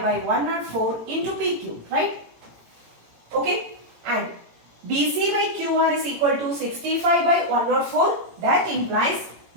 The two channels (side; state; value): left; late; 18 ms